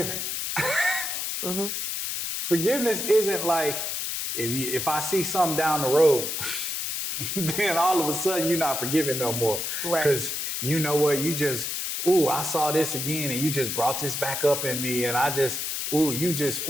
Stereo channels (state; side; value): noise; left; hiss, 3 dB below the sound